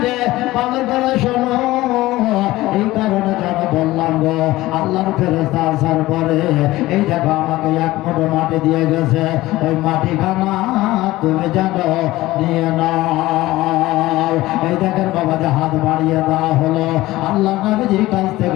রে, ভালো করে শোনো, এই কারণে যেন বললাম গো আল্লাহর ফেরেশতা আসার পরে এই দেখো আমাকে এক মুঠো মাটি দিয়ে গেছে, ওই মাটিখানা তুমি জানো নিয়ে নাও। এই দেখেন বাবা যে হাত বাড়িয়ে দেওয়া হলো, আল্লাহ নবীজির কাছ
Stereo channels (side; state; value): right; quieter; 17.6 dB